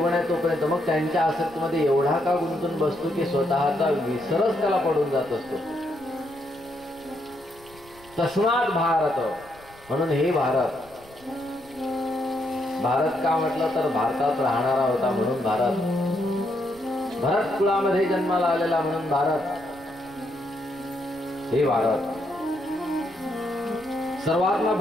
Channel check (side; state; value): left; noise; rumble, 26 dB below the sound